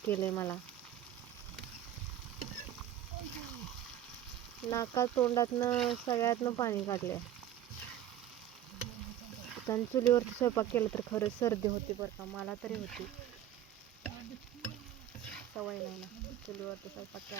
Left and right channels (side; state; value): left; quieter; 11.2 dB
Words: केलंय मला. नाका तोंडातनं सगळ्यातनं पाणी काढले. कारण चुलीवरती स्वयंपाक केला तर खरंच सर्दी होती बरं का, मला तरी होती. सवय नाही ना चुलीवरती स्वयंपाक